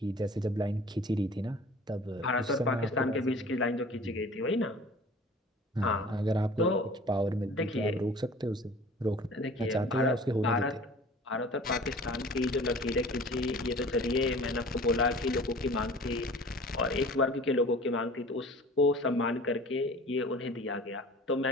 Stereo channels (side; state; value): both; normal; correlation 0.45